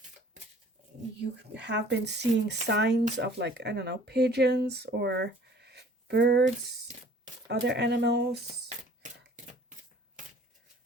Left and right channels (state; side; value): normal; both; correlation 0.52